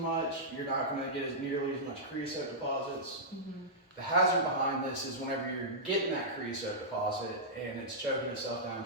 much, you're not going to get nearly as much creosote deposits. Mm-hmm. The hazard behind this is whenever you're getting that creosote deposit and it's choking itself down,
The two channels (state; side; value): normal; both; correlation -0.12